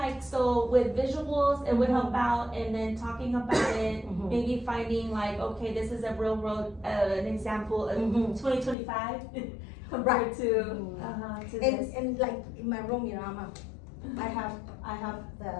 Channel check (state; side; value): drops out; right; at 8.8 s